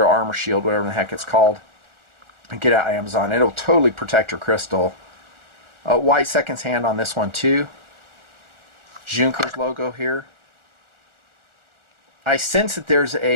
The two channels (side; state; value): left; late; 1.4 ms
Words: armor shield, whatever the heck it's called. And get it out of Amazon. It'll totally protect your crystal. White seconds hand on this one too. Junkers logo here. I sense that there's